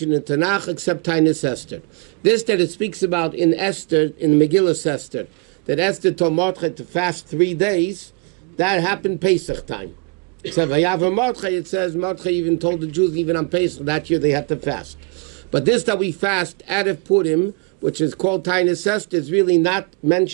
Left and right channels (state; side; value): quieter; left; 34.1 dB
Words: in Tanakh except Tainus Esther. This that it speaks about in Esther, in Megillah Esther, that Esther told Mordechai to fast 3 days, that happened Pesach time. Except Vayav Mordechai, it says Mordechai even told the Jews even on Pesach that year they had to fast. But this that we fast out of Purim, which is called Tainus Esther, is really not